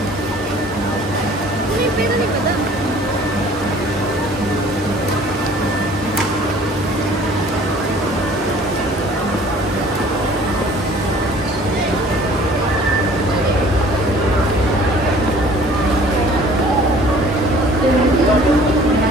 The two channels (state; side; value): normal; both; correlation 0.51